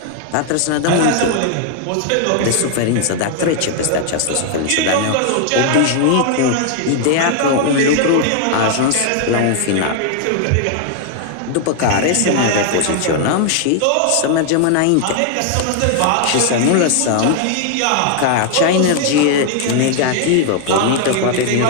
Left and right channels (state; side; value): different; both; correlation 0.00